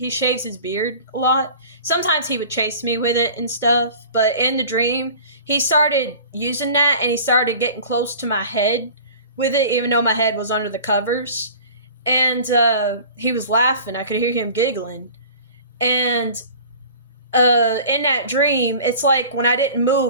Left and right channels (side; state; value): both; inverted; correlation -0.42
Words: shaves his beard a lot. Sometimes he would chase me with it and stuff, but in the dream, he started using that and he started getting close to my head with it, even though my head was under the covers. And he was laughing. I could hear him giggling. And in that dream, it's like when I didn't